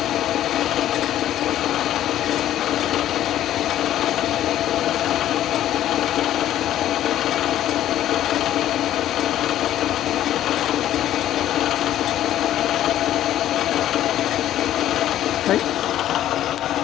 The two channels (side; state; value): right; quieter; 12.3 dB